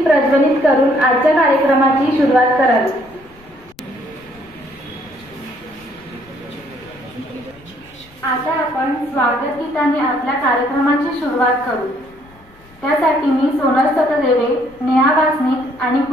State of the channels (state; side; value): noise; left; rumble, 27 dB below the sound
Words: प्रज्वलित करून आजच्या कार्यक्रमाची सुरुवात करावी। आता आपण स्वागत गीताने आपल्या कार्यक्रमाची सुरुवात करू। त्यासाठी मी सोनल सतदेवे, नेहा वासनिक आणि